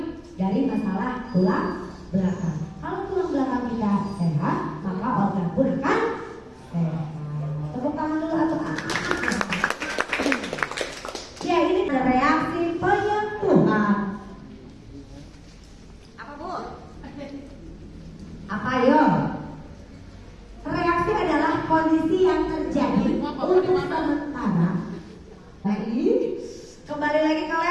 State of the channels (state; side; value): identical; both; correlation 1.00